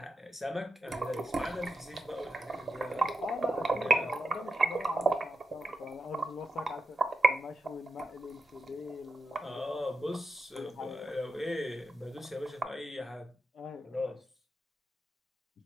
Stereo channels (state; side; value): normal; both; correlation 0.89